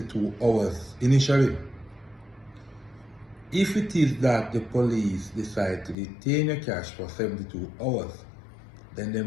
hours initially. If it is that the police decide to detain your cash for 72 hours, then they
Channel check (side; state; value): right; drops out; at 6.0 s